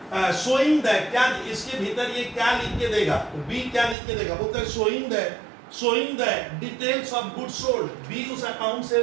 शोइंग द, क्या इसके भीतर ये क्या लिख के देगा, बी क्या लिख के देगा, बोलते हैं showing the details of goods sold। B उस अकाउंट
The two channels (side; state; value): left; drops out; at 4.0 s